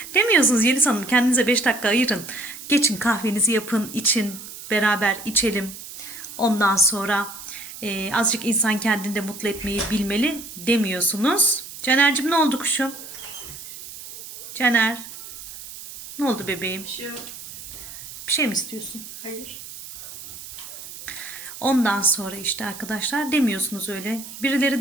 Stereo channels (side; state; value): right; noise; hiss, 13 dB below the sound